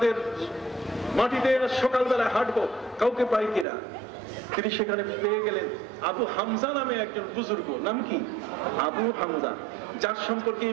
মাটিতে সকালবেলা হাঁটবো, কাউকে পাই কিনা। তিনি সেখানে পেয়ে গেলেন আবু হামজা নামে একজন বুজুর্গ। নাম কি? আবু হামজা, যার সম্পর্কে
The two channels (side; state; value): left; drops out; at 3.7 s